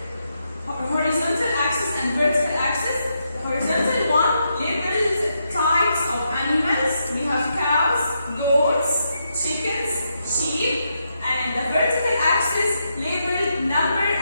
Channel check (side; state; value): both; inverted; correlation -0.81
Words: horizontal axis and vertical axis. The horizontal one labels types of animals. We have cows, goats, chickens, sheep, and the vertical axis labeled number